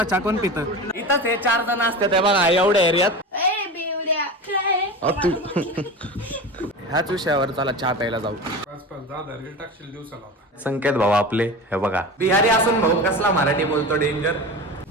चहा कोण पितं. इथंच हे 4 जण असतात बघा एवढ्या एरियात. ह्याच विषयावर चला चहा प्यायला जाऊ. संकेत भाऊ आपले हे बघा बिहारी असून भाऊ कसला मराठी बोलतो डेंजर.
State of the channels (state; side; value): normal; both; correlation 0.29